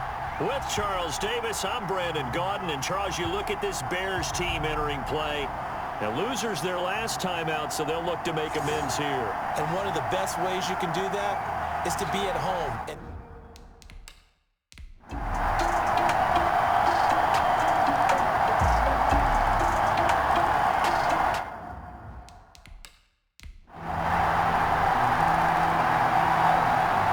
With Charles Davis, I'm Brandon Gaudin. And Charles, you look at this Bears team entering play. Now, losers their last time out, so they'll look to make amends here. And one of the best ways you can do that is to be at home.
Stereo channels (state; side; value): identical; both; correlation 1.00